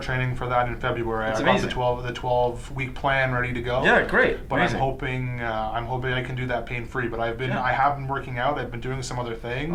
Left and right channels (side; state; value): both; identical; correlation 1.00